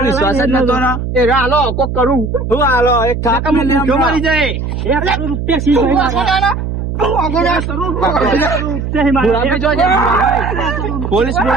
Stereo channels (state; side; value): noise; right; hum, 4 dB below the sound